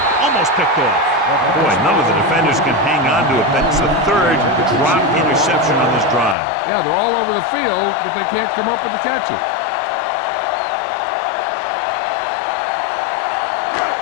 Almost picked off. Boy, none of the defenders can hang on to it. That's the 3rd drop interception on this drive. Yeah, they're all over the field, but they can't come up with the catch it.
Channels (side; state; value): right; drops out; at 6.4 s